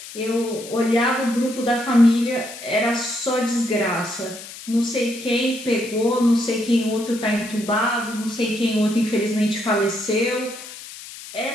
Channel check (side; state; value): left; noise; hiss, 14 dB below the sound